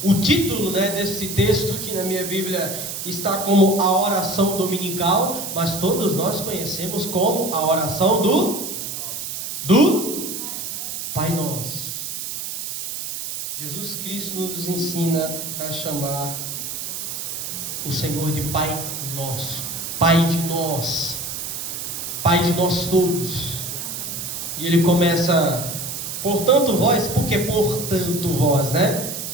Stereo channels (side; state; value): right; noise; hiss, 5 dB below the sound